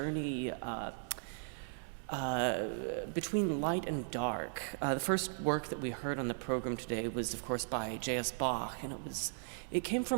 between light and dark. The first work that we heard on the program today was, of course, by J.S. Bach, and it came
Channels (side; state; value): left; silent; digital silence